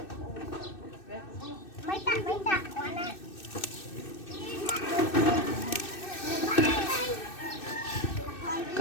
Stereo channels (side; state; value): right; late; 2.6 ms